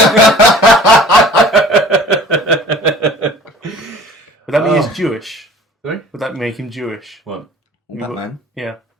that mean he's Jewish? Sorry? Would that make him Jewish? What? Batman. Yeah.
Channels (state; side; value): normal; both; correlation 0.46